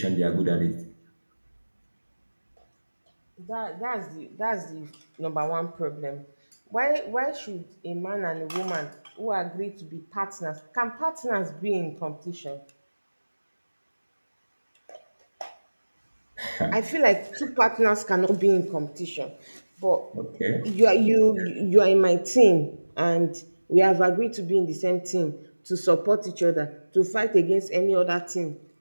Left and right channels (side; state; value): both; inverted; correlation -1.00